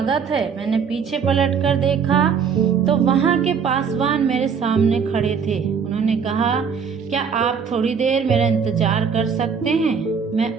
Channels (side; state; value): left; quieter; 6.5 dB